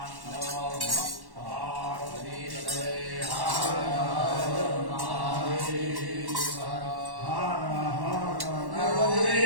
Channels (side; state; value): left; late; 1.1 ms